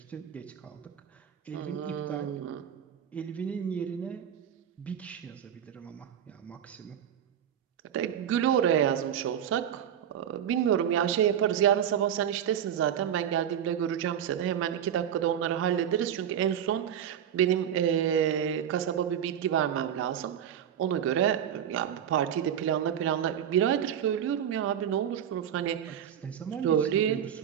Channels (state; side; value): quieter; left; 9.5 dB